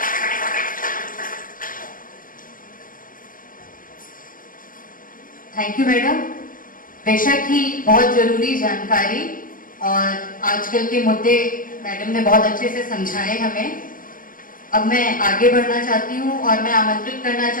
Thank you madam. बेशक ही बहुत जरूरी जानकारी और आजकल के मुद्दे मैडम ने बहुत अच्छे से समझाए हमें। अब मैं आगे बढ़ना चाहती हूँ और मैं आमंत्रित करना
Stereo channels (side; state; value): right; late; 0.40 ms